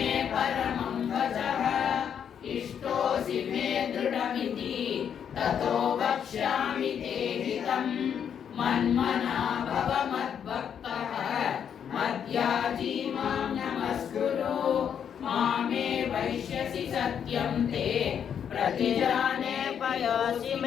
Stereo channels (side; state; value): right; quieter; 8.2 dB